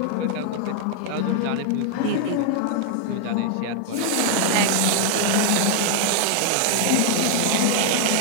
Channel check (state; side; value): different; both; correlation 0.00